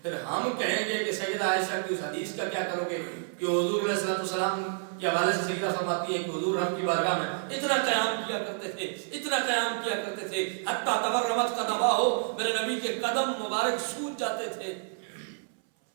پھر ہم کہیں گے کہ سیدہ عائشہ کی اس حدیث کا کیا کرو گے کہ حضور علیہ السلام کے حوالے سے سیدہ فرماتی ہیں کہ حضور رب کی بارگاہ میں اتنا قیام کیا کرتے تھے، اتنا قیام کیا کرتے تھے، حتیٰ تورمت قدماہ، میرے نبی کے قدم مبارک سوج جاتے تھے.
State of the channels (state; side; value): silent; left; 58 dB below the other